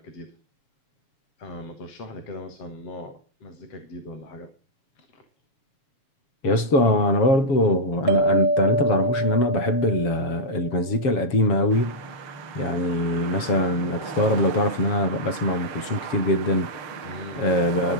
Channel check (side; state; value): right; late; 7.3 ms